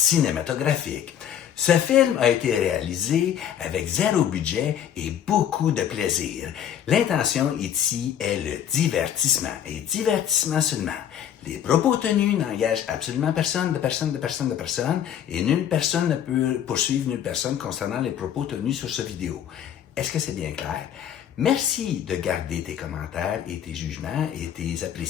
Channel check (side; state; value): right; quieter; 9.7 dB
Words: Ce film a été réalisé avec zéro budget et beaucoup de plaisir. L'intention ici est le divertissement, et divertissement seulement. Les propos tenus n'engagent absolument personne, et nulle personne ne peut poursuivre nulle personne concernant les propos tenus sur cette vidéo. Est-ce que c'est bien clair? Merci de garder tes commentaires et tes jugements et tes